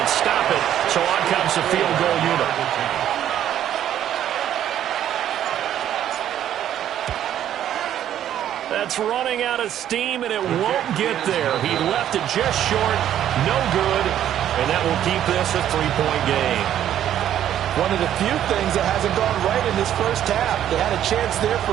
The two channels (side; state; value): left; quieter; 11.0 dB